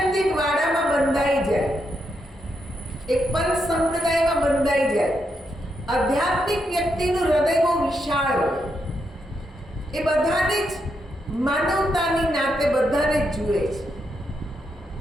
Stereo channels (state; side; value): normal; both; correlation 0.82